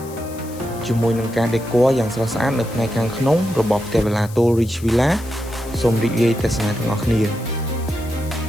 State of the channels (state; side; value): noise; left; hiss, 19 dB below the sound